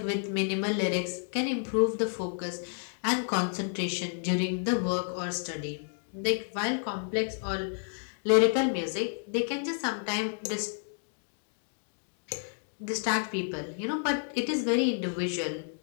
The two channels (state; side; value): silent; right; digital silence